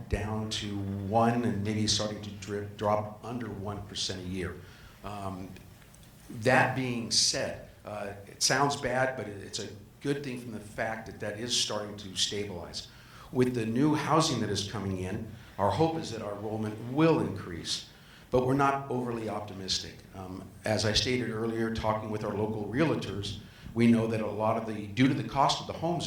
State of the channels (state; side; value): identical; both; correlation 1.00